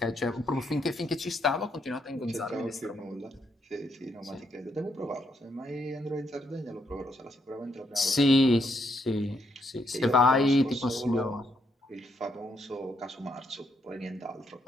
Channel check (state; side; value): normal; both; correlation 0.76